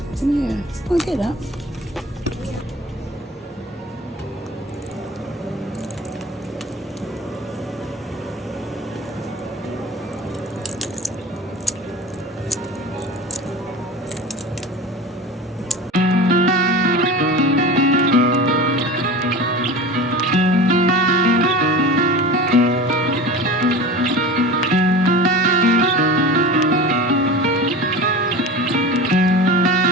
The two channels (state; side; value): normal; both; correlation 0.33